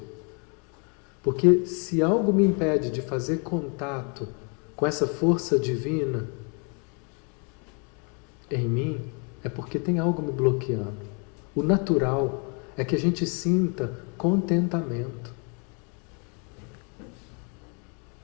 Porque se algo me impede de fazer contato com essa força divina em mim, é porque tem algo me bloqueando. O natural é que a gente sinta contentamento.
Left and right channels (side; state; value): right; quieter; 36.4 dB